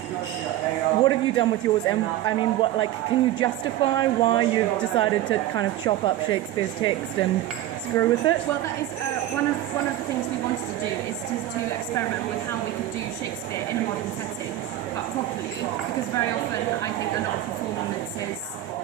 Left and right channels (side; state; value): left; quieter; 13.6 dB